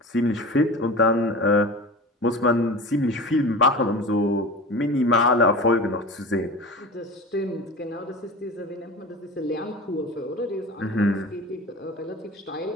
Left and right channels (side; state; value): both; normal; correlation 0.34